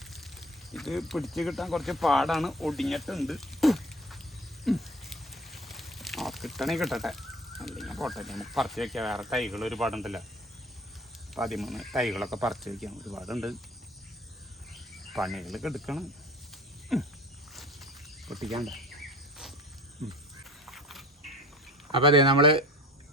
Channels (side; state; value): both; normal; correlation 0.43